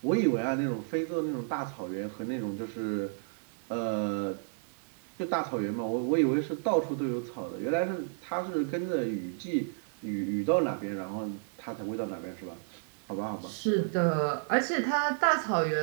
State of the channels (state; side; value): silent; left; 57 dB below the other